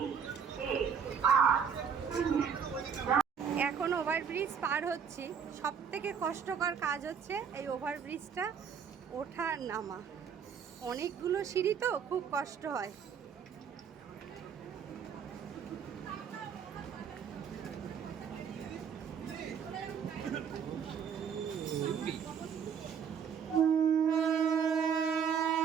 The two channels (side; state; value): left; quieter; 7.2 dB